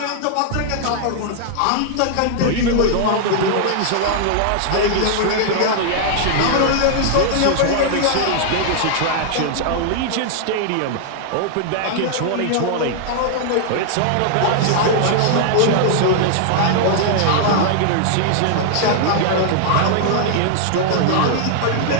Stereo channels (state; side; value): different; both; correlation -0.01